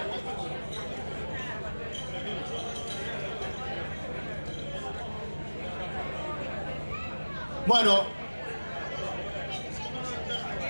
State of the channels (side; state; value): both; inverted; correlation -1.00